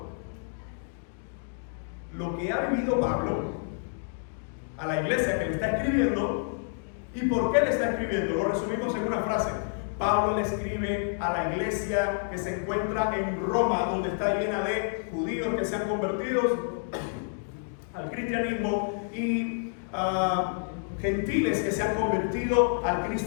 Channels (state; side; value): silent; right; digital silence